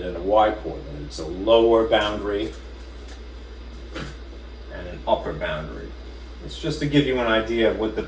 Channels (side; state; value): both; identical; correlation 1.00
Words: and a y coordinate. It's a lower boundary and an upper boundary. It's just to give you an idea of what the